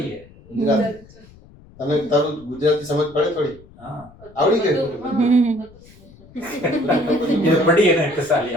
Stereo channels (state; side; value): noise; left; rumble, 24 dB below the sound